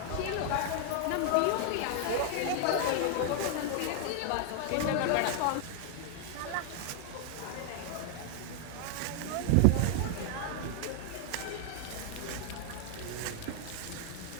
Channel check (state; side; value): different; both; correlation 0.00